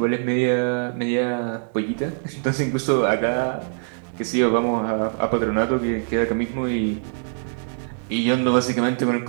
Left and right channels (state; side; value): silent; left; 63 dB below the other